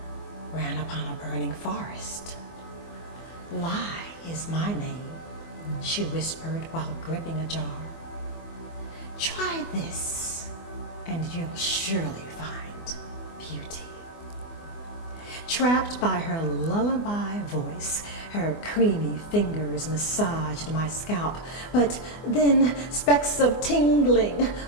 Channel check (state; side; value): late; right; 24 ms